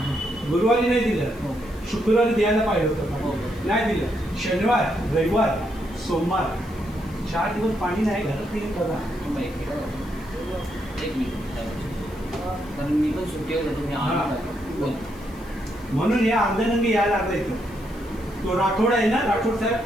गुरुवारी नाही दिलं, शुक्रवारी द्यायला पाहिजे होतं पाणी, नाही दिलं. शनिवार, रविवार, सोमवार 4 दिवस पाणी नाही. घरात येईल बघा. एक मिनिट, कारण मी पण सुट्टीवर होतो. मी म्हणून या अर्ध्यानंगी यायला लागला इथं. तो राठोड आहे ना, राठोड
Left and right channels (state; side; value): noise; left; hiss, 25 dB below the sound